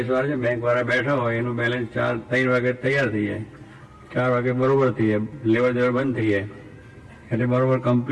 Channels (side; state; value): both; identical; correlation 1.00